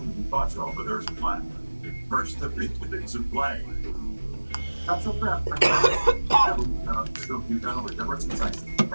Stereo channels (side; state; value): both; inverted; correlation -1.00